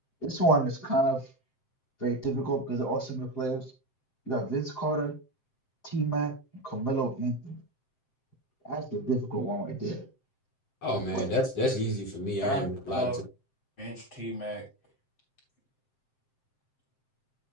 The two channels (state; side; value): late; right; 7.6 ms